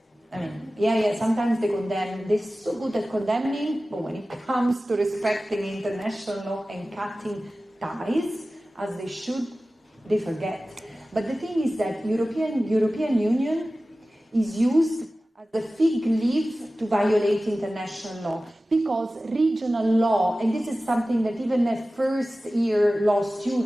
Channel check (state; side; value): normal; both; correlation 0.96